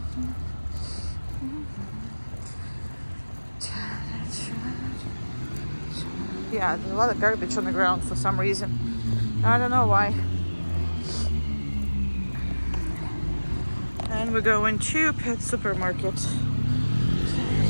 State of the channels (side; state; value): both; inverted; correlation -1.00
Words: Yeah, there's a lot of garbage on the ground for some reason. I don't know why. And we're going to Pet Supermarket.